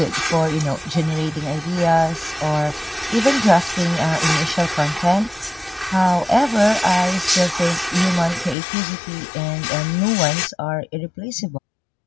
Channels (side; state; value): right; drops out; at 8.6 s